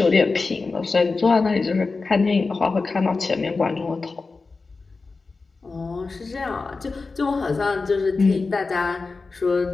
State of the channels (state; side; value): quieter; right; 4.0 dB